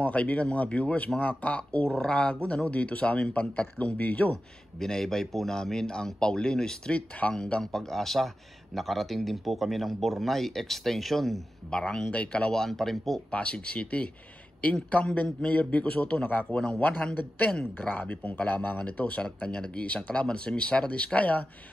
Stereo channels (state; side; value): normal; both; correlation 0.93